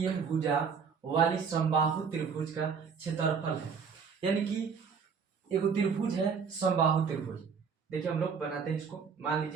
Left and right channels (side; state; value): left; quieter; 6.1 dB